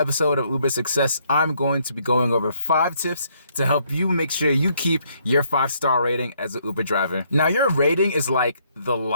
of Uber Success, I'm going to be going over 5 tips to help you make sure you keep your 5-star rating as an Uber driver. Now, your rating is like the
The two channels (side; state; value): both; inverted; correlation -0.70